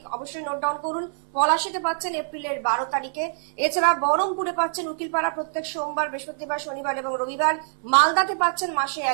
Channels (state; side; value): silent; left; 62 dB below the other